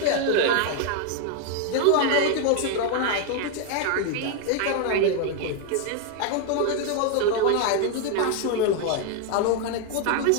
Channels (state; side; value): different; both; correlation 0.01